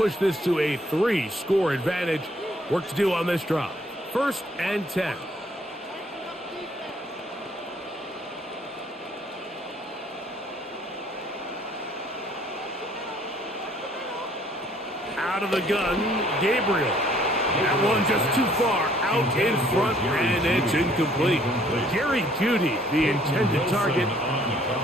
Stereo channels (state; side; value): normal; both; correlation 0.61